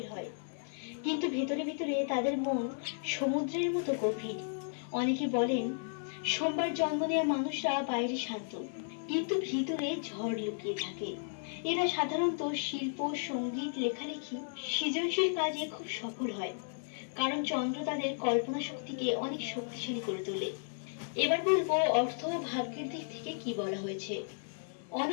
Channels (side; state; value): right; silent; digital silence